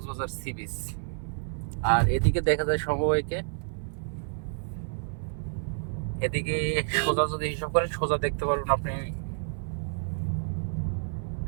সি বিচ। আর এদিকে দেখা যায় সমবায়কে, এদিকে সোজা যদি হিসাব করেন সোজা দেখতে পারবেন আপনি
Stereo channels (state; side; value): silent; left; 57 dB below the other